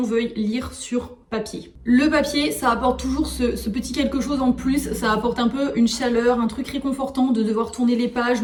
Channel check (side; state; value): both; identical; correlation 1.00